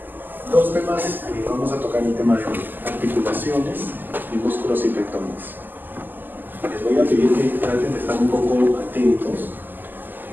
Dos temas, vamos a tocar el tema de articulaciones y músculos y tendones. Les voy a pedir que traten de estar un poco atentos.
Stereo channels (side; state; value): left; late; 0.089 ms